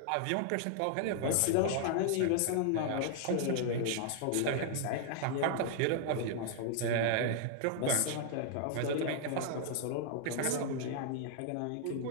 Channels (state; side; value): different; both; correlation 0.00